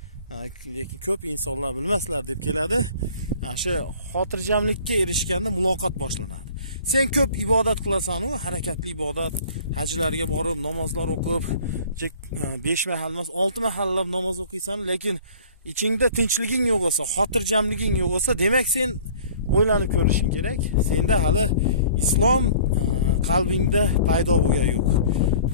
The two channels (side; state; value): both; inverted; correlation -0.49